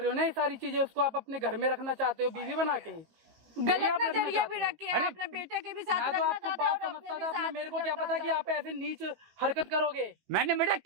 रहे हो ना ये सारी चीजें? उसको आप अपने घर में रखना चाहते हो बीवी बना के? गलत आप रखना नजरिया चाहते भी हो? रखे हैं, अरे, अपने बेटे के भी साथ मैं तो रखना आपको चाहते हैं बात और अपने समझता भी था, अपने साथ मेरे को क्या रखना पता कि चाहते आप ऐसे नीच हरकत करोगे। मैंने बेटा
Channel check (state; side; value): late; left; 17 ms